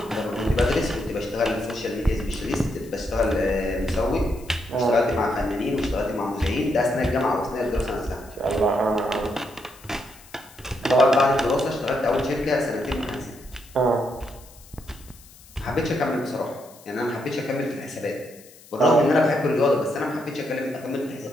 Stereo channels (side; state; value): left; noise; hiss, 23 dB below the sound